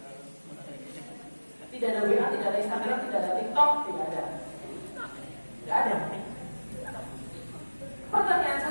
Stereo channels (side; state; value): both; inverted; correlation -1.00